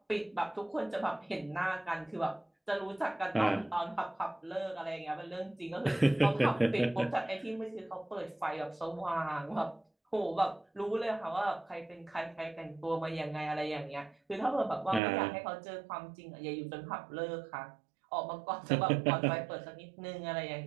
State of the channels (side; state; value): left; drops out; at 15.0 s